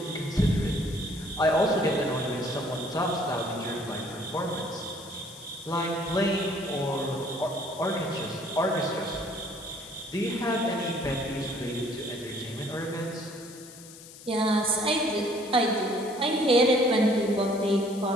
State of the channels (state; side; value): noise; left; hiss, 18 dB below the sound